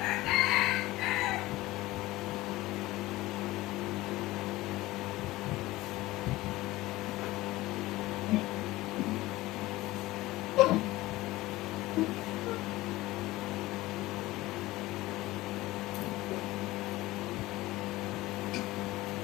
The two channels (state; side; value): quieter; right; 18.4 dB